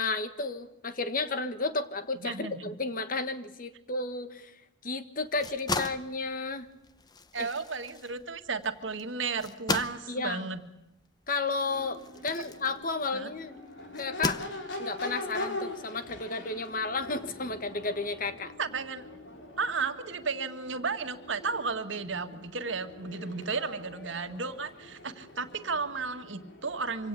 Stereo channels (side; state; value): both; normal; correlation -0.12